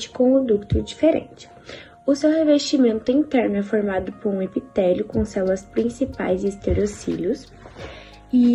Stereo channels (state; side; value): identical; both; correlation 1.00